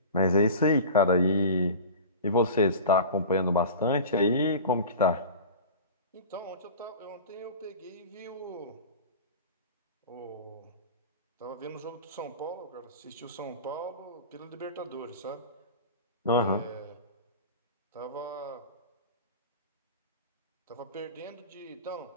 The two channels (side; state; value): both; inverted; correlation -0.34